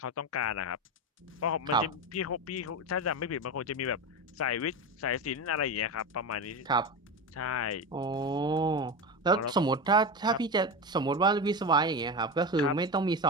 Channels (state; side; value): normal; both; correlation 0.20